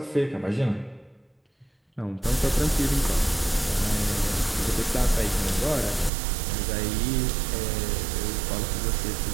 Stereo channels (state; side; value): drops out; left; at 6.1 s